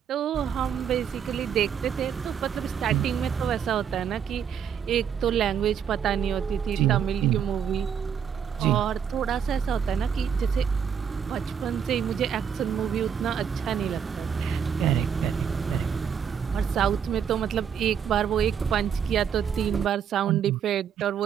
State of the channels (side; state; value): left; quieter; 7.8 dB